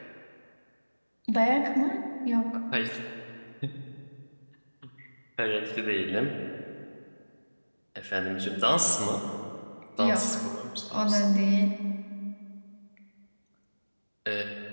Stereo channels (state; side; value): inverted; both; correlation -1.00